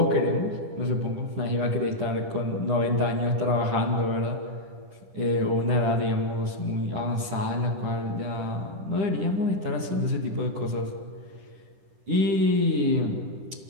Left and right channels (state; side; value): late; left; 10 ms